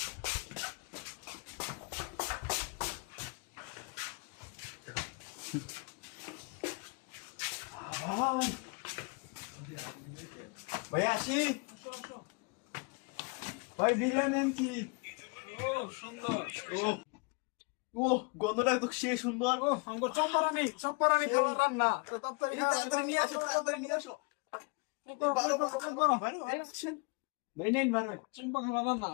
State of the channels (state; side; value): quieter; right; 30.6 dB